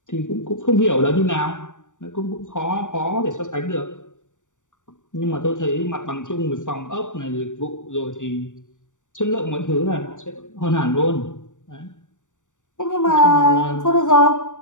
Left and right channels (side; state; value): right; late; 0.86 ms